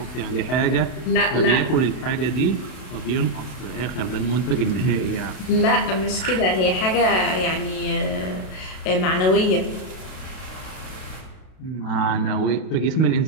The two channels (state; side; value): late; right; 32 ms